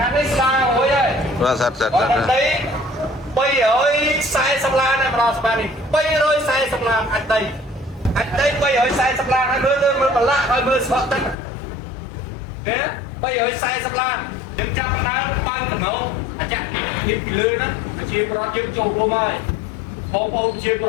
ាងនេះស្ដារមួយហើយបាទសិត340ឡានម្ដងស្មាននេះ340ឡានអាចដី340ឡានហើយមើលប្រឡាក់ហើយមើលស្បកទឹកគេ340ឡានយើងចាប់ដើមបើកកំណោអាចាក់នេះពីលើហ្នឹងជាប្រវត្តិយើងចូលរួមហើយបងប្អូនជាប្រ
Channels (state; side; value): drops out; right; at 11.4 s